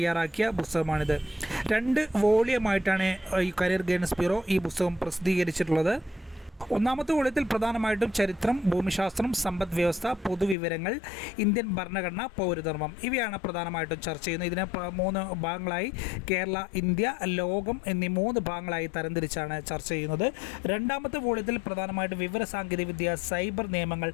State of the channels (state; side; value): drops out; right; at 10.6 s